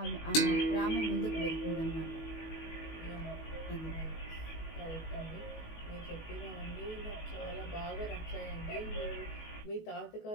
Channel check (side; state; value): right; late; 19 ms